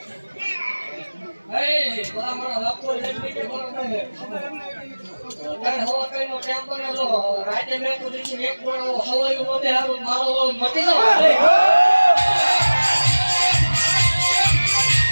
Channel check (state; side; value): inverted; both; correlation -1.00